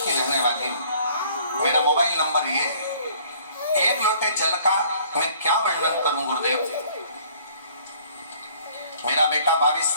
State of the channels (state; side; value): inverted; both; correlation -0.57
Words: रहने वाली हूँ। मेरा मोबाइल नंबर ये है। एक लोटे जल का मैं क्या वर्णन करूं गुरुदेव। मेरा बेटा 22